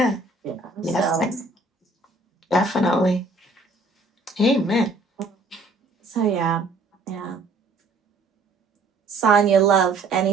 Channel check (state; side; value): quieter; left; 3.2 dB